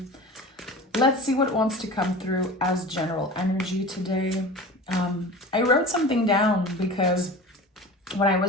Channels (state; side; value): normal; both; correlation 0.36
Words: Let's see what wants to come through as general energy today. I wrote something down because when I